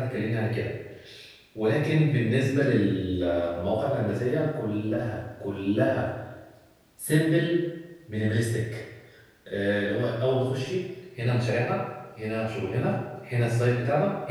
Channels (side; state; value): both; identical; correlation 1.00